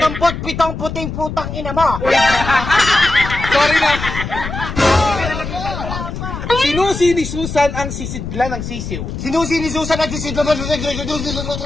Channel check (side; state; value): left; noise; rumble, 7 dB below the sound